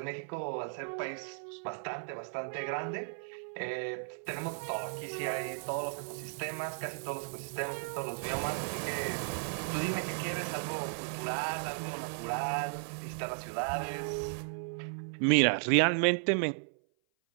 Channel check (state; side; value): silent; left; 55 dB below the other